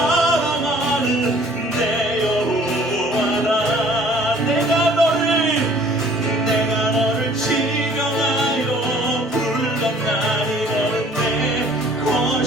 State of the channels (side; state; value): both; normal; correlation 0.54